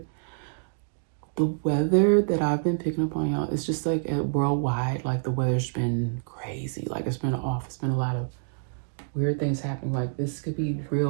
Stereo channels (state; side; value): silent; left; digital silence